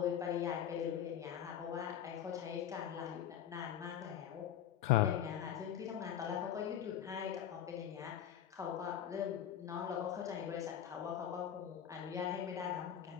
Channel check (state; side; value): quieter; right; 9.7 dB